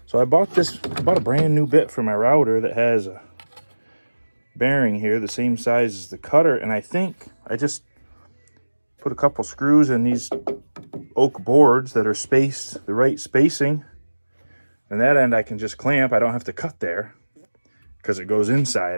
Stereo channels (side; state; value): both; inverted; correlation -1.00